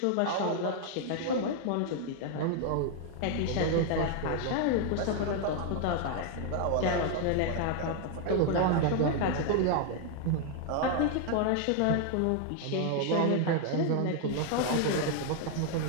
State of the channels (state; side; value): different; both; correlation 0.00